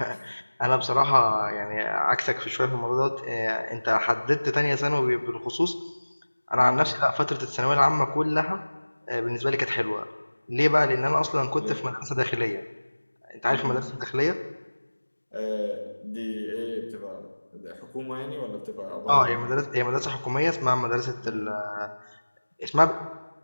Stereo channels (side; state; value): both; inverted; correlation -1.00